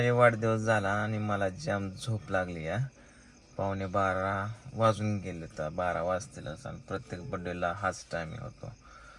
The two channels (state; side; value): identical; both; correlation 1.00